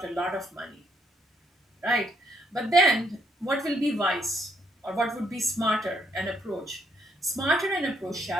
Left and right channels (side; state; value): both; normal; correlation 0.72